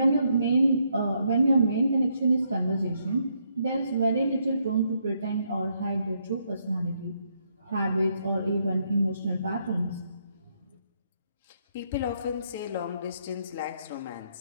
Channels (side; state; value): both; inverted; correlation -0.75